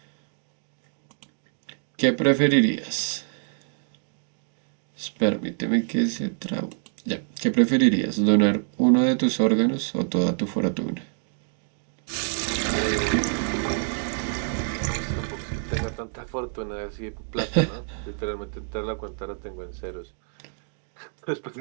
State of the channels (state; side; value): silent; left; 61 dB below the other